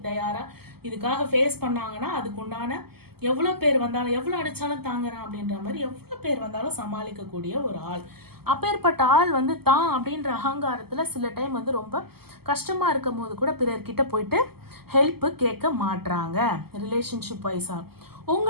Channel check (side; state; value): left; late; 0.96 ms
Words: தயாராக இதுக்காக ஃபேஸ் பண்ணாங்கன்னா அதுக்கு உண்டான எவ்வளோ பேர் வந்தாலும், எவ்வளோ அடித்தாலும் தாங்குறான் அப்படின்ற மாதிரி எவ்வளோ பேர் வந்தாலும் சமாளிக்கக்கூடிய ஒரு ஆள். அப்பேற்பட்ட ஆள் வந்து தான் அப்படின்ற அகங்காரத்தில் சில டைம் வந்து ரொம்ப கஷ்டமாக இருக்கும் போது கூட பிறர்கிட்ட போயிட்டு ஹெல்ப்பு கேட்க மாட்றாங்க. ரிலேஷன்ஷிப் வைஸாக